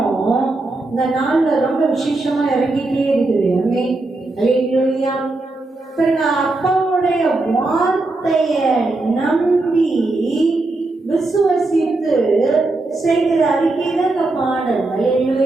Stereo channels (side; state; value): left; quieter; 3.1 dB